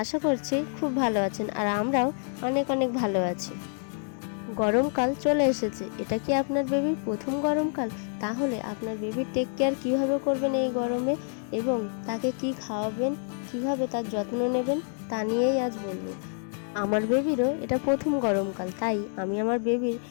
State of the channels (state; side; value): silent; right; 60 dB below the other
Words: আশা করছি খুব ভালো আছেন আর আমরাও অনেক অনেক ভালো আছি। গরমকাল চলে এসেছে। এটা কি আপনার বেবির প্রথম গরমকাল? তাহলে আপনার বেবির টেক কেয়ার কীভাবে করবেন এই গরমে এবং তাকে কি খাওয়াবেন, কিভাবে তার যত্ন নেবেন তা নিয়েই আজ বলবো। আমার বেবিরও এটা প্রথম গরমকাল, তাই আমি আমার বেবির